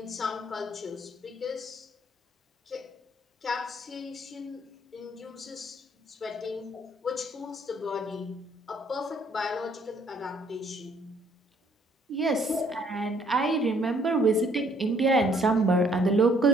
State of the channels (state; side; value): normal; both; correlation 0.64